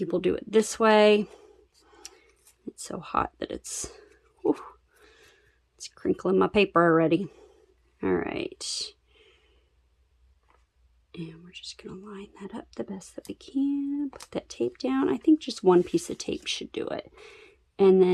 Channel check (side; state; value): both; identical; correlation 1.00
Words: do it this way. It's so hot that it's crinkling my paper already. All right. And we're just going to line that up the best that we can. Put that tape down. I think just one piece of tape should do it. And